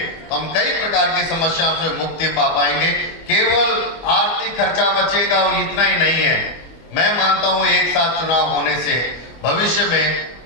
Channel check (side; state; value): right; late; 25 ms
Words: हम कई प्रकार की समस्याओं से मुक्ति पा पाएंगे। केवल आर्थिक खर्चा बचेगा और इतना ही नहीं है। मैं मानता हूं एक साथ चुनाव होने से भविष्य में